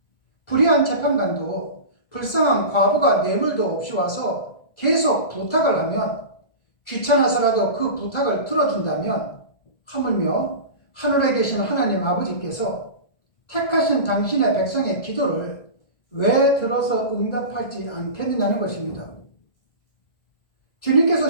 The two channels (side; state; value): right; late; 1.7 ms